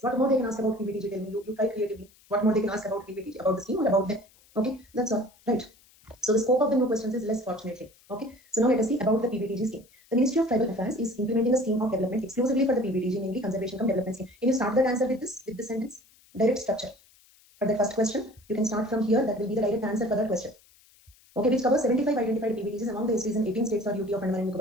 What more they can ask about PBTG? Tell me. You try creatively. What more they can ask about PBTG, about the scheme or about them? Okay, that's all. Right. So the scope of the new questions is less, fortunately. Okay. So now let us see about the PBTG scheme. The Ministry of Tribal Affairs is implementing a scheme of development exclusively for the PBTG, namely Conservation Cum Development Scheme. Can you start that answer with this sentence? Direct structure. For the first question, you can start from here. That will be the direct answer for that question. Okay, which covers 75 identified PBTGs among the STs in 18 states or UT of Andaman and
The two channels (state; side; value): noise; left; hiss, 29 dB below the sound